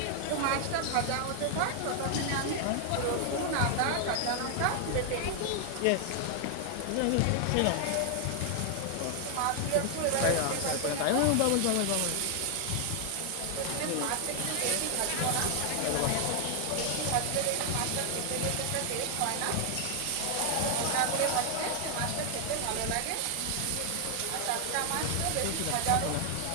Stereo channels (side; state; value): both; different; correlation 0.00